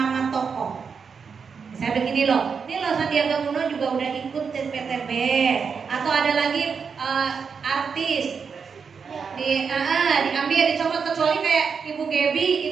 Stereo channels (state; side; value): quieter; left; 5.9 dB